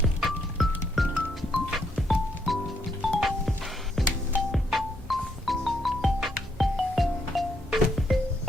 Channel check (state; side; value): normal; both; correlation 0.75